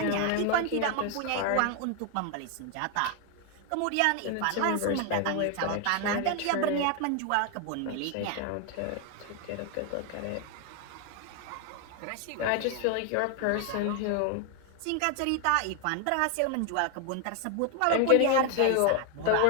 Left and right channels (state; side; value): different; both; correlation 0.00